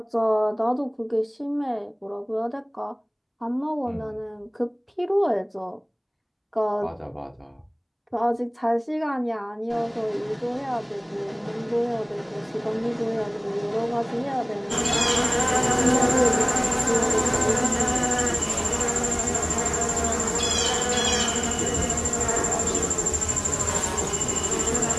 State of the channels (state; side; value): identical; both; correlation 1.00